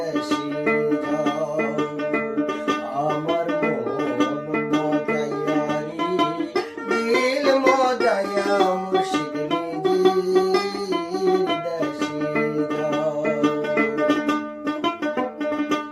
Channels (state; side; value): identical; both; correlation 1.00